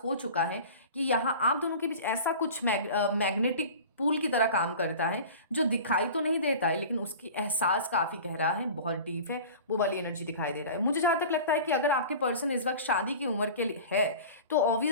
हो चुका है कि यहाँ आप दोनों के बीच ऐसा कुछ मैग्नेटिक पूल की तरह काम करता है जो दिखाई तो नहीं देता है, लेकिन उसकी एहसास काफ़ी गहरा है, बहुत डीप है, वो वाली एनर्जी दिखाई दे रहा है। मुझे जहाँ तक लगता है कि अगर आपके पर्सन इस वक्त शादी की उम्र के लिए है तो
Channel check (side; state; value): both; inverted; correlation -0.38